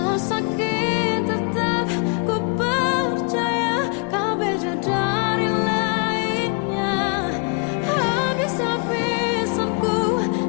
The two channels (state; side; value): quieter; right; 34.8 dB